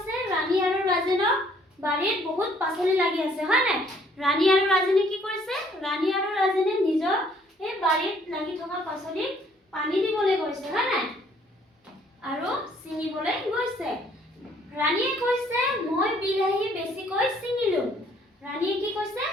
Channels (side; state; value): both; normal; correlation 0.62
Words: ৰাণী আৰু ৰাজেনৰ বাৰীত বহুত পাচলি লাগি আছে, হয় নাই? ৰাণী আৰু ৰাজেনে কি কৰিছে? ৰাণী আৰু ৰাজেনে নিজৰ এই বাৰীত লাগি থকা পাচলিত পানী দিবলৈ গৈছে, হয় নাই? আৰু ছিঙিবলৈ গৈছে। ৰাণীয়ে কৈছে মই বিলাহী বেছিকৈ ছিঙিলোঁ। ৰাণীয়ে কি কৈছে?